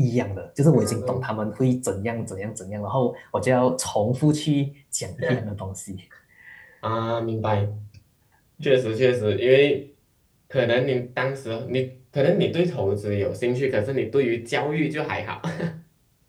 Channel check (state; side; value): identical; both; correlation 1.00